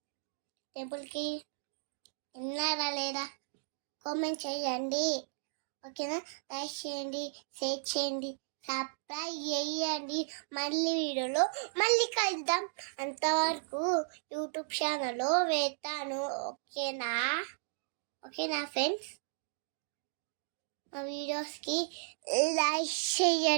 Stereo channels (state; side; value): silent; left; digital silence